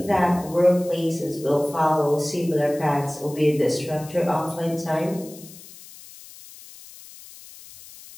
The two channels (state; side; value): noise; left; hiss, 19 dB below the sound